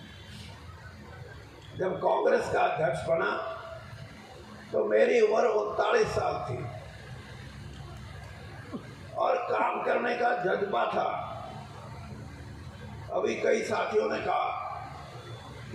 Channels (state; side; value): identical; both; correlation 1.00